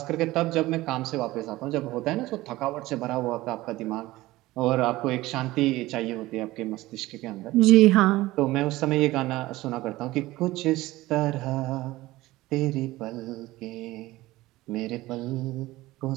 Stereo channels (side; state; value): left; quieter; 18.2 dB